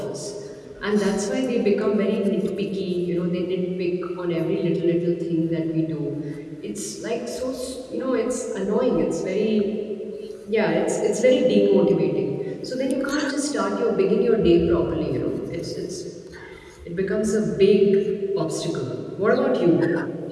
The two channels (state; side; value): identical; both; correlation 1.00